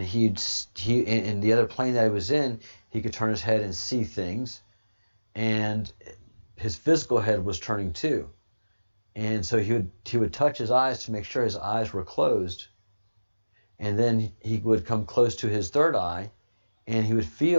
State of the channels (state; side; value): inverted; both; correlation -1.00